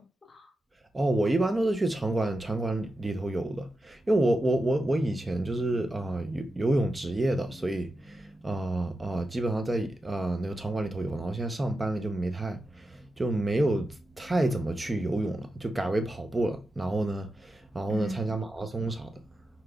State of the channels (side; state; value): both; normal; correlation 0.89